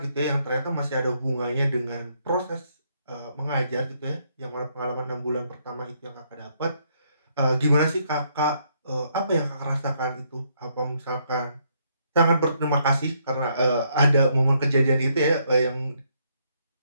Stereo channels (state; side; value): inverted; both; correlation -0.73